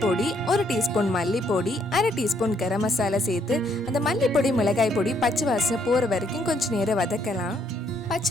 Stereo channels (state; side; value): normal; both; correlation 0.70